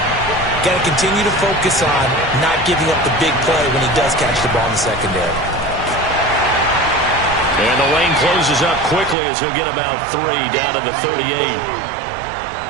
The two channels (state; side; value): drops out; left; at 9.2 s